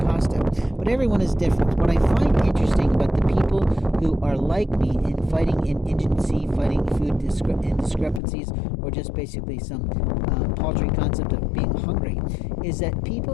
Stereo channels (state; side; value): drops out; right; at 8.2 s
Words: But everyone is different. What I find interesting about the people who are like me in fighting indigency, fighting food indiscrepancies, or just basically some paltry concept of being hungry, is that